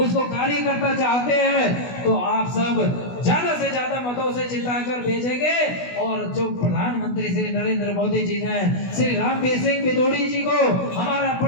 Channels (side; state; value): right; late; 16 ms